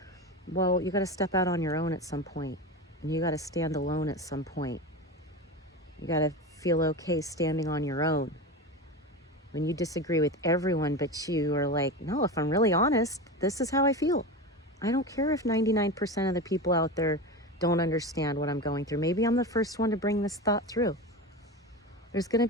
Well, you got to step out on your own at some point, and you got to stand alone at some point. You got to feel okay standing on your own. When you disagree with everyone, but you are like, no, if I'm really honest, this is how I feel. I don't care if 99% of the people out there don't understand what I'm going through. Maybe I'm the first one to bring this thought through. There's going to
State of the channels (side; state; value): both; normal; correlation 0.24